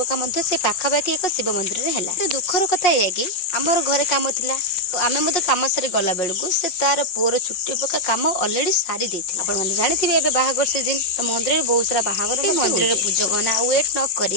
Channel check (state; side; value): late; right; 5.6 ms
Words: से पाखापाखि एक शिव मंदिर है। दुखर कथा यह कि आमर घरे काम थिला आम कम सारी गला बेलू से तार पुअर चुट्टी पका कम अलरेडी सारी देथिला। आपण जानते बाहागर सीजन तो मंदिर में बहुत सारा बाहागर मंदिर पूजक ना वेट न